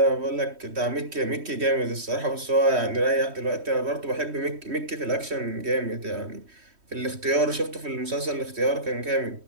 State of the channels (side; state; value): left; late; 3.1 ms